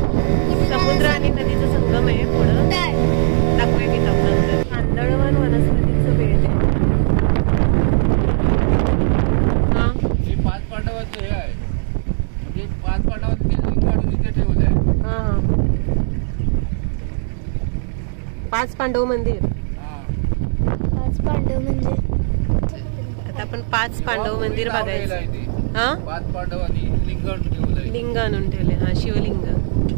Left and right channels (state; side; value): silent; left; digital silence